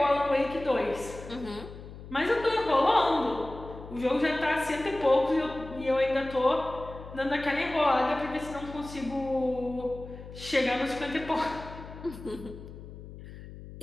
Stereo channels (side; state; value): left; noise; hum, 14 dB below the sound